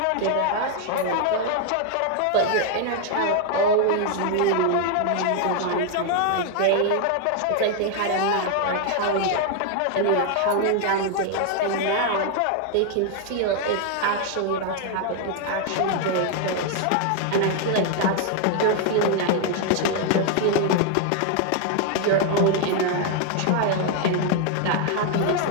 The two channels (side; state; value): both; different; correlation 0.00